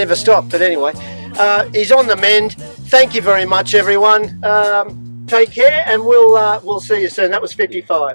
stop, but anyway. He's on the mend. Thank you very much, everyone. Take care, and we'll see you soon. That was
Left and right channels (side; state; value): both; inverted; correlation -1.00